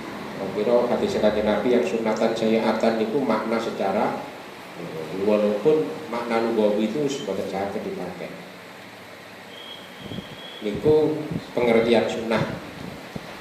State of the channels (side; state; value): both; identical; correlation 1.00